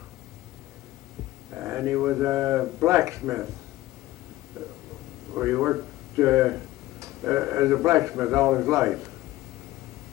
and he was a blacksmith. He worked as a blacksmith all his life.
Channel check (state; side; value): quieter; right; 16.8 dB